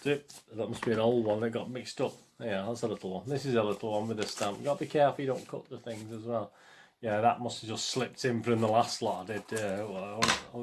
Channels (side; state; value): both; identical; correlation 1.00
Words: That must be an old one that got mixed up. Yeah, that's a little one. This is a little one with a stamp. You've got to be careful you don't cut the things as well. Yeah, that must have just slipped in from the last lot I did. I